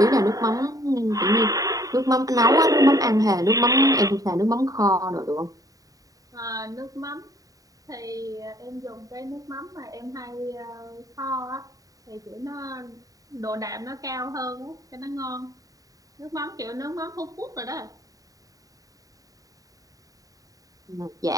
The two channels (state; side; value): late; left; 0.17 ms